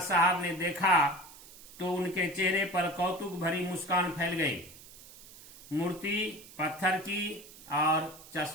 ने देखा तो उनके चेहरे पर कौतुक भरी मुस्कान फैल गई। मूर्ति पत्थर की और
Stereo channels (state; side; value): noise; right; hiss, 19 dB below the sound